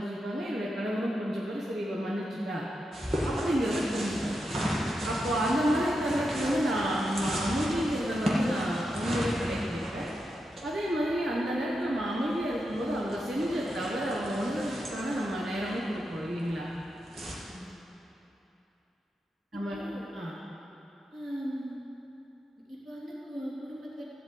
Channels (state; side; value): normal; both; correlation 0.86